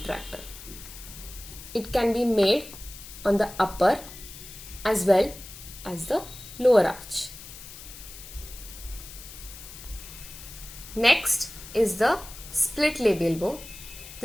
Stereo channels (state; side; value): noise; left; hiss, 15 dB below the sound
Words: It can be made on the upper as well as the lower arch. Next is the split labial bow.